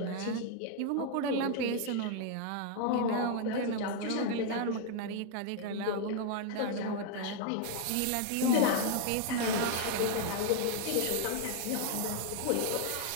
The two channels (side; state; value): both; different; correlation 0.00